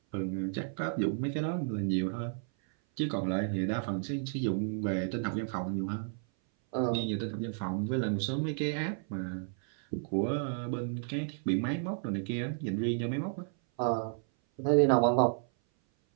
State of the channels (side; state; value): left; silent; 56 dB below the other